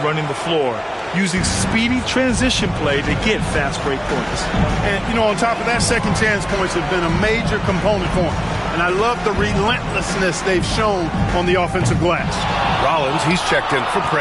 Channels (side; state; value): both; identical; correlation 1.00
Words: running the floor, using speedy transition play to get fast break points. And, you know, on top of that, second chance points have been a major component for them. And I love the relentlessness they've shown on the offensive glass. Rollins, he's checked in for